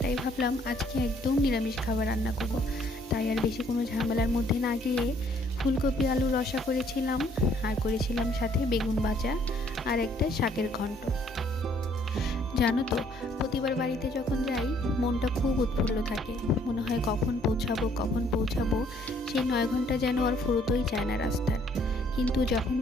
তাই ভাবলাম আজকে একদম নিরামিষ খাবার রান্না করব। তাই আর বেশি কোনো ঝামেলার মধ্যে না গিয়ে ফুলকপি আলু রসা করেছিলাম, আর করেছিলাম সাথে বেগুন ভাজা আর একটা শাকের ঘন্ট। জানো তো, প্রতিবার বাড়িতে যখন যাই মনটা খুব উৎফুল্ল থাকে। মনে হয় কখন পৌঁছাবো। সেই 9 ঘন্টা যেন আর ফুরোতেই চায় না রাস্তার। কিন্তু যখন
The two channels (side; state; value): both; normal; correlation 0.63